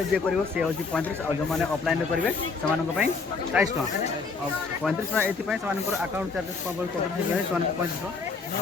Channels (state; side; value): quieter; right; 4.5 dB